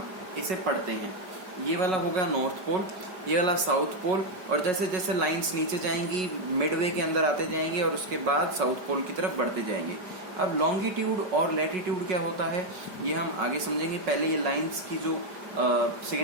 इसे पढ़ते हैं. ये वाला होगा नॉर्थ पोल, ये वाला साउथ पोल, और जैसे जैसे लाइंस नीचे जाएंगी मिडवे के अंदर आते जाएंगे और उसके बाद साउथ पोल की तरफ बढ़ते जाएंगे. अब लॉन्गिट्यूड और लैटिट्यूड क्या होता है ये हम आगे समझेंगे. पहले ये लाइंस की जो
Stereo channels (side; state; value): left; late; 5.4 ms